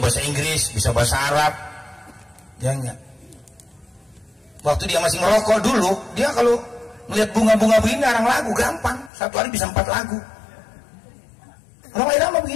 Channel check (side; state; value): right; drops out; at 9.1 s